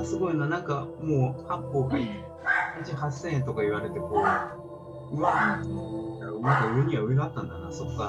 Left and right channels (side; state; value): both; identical; correlation 1.00